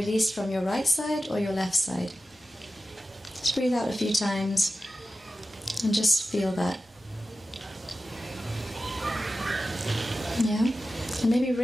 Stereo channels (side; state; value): both; normal; correlation 0.93